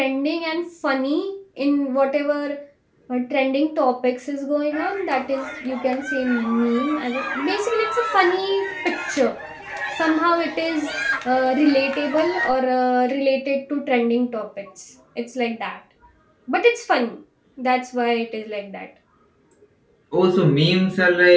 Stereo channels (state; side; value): identical; both; correlation 1.00